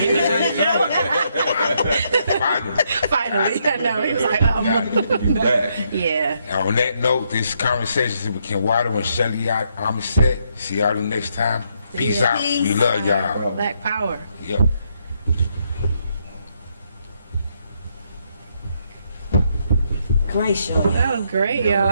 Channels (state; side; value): inverted; both; correlation -0.75